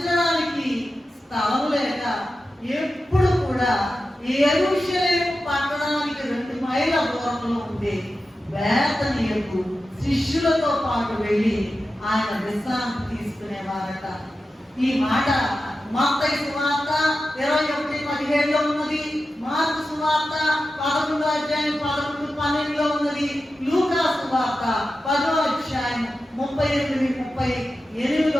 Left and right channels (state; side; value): normal; both; correlation 0.92